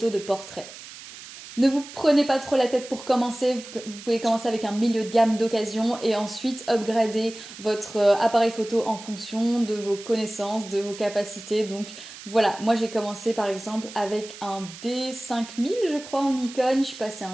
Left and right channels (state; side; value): noise; right; hiss, 15 dB below the sound